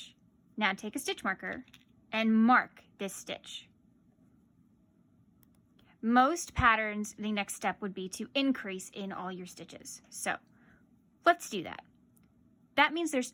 Now take a stitch marker and mark this stitch. Most patterns, the next step would be to increase in all your stitches. So let's do that. That means there's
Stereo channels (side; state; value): both; identical; correlation 1.00